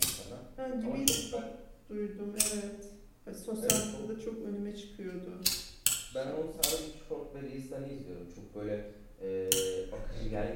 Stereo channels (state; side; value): identical; both; correlation 1.00